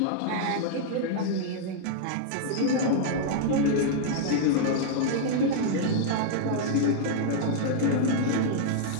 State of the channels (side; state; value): both; different; correlation -0.01